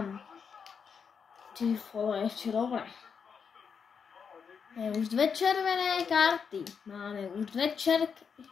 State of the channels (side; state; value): right; quieter; 6.4 dB